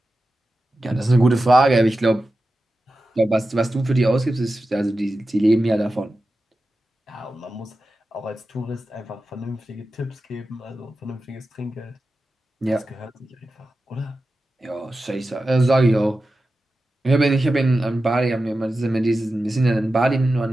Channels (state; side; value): normal; both; correlation 0.93